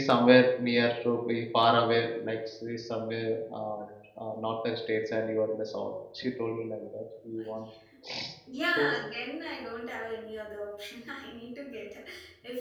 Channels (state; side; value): identical; both; correlation 1.00